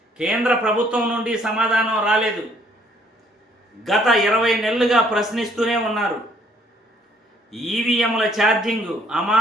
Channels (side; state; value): both; normal; correlation 0.63